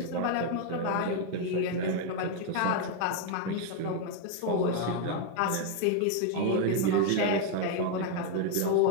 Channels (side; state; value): both; different; correlation 0.01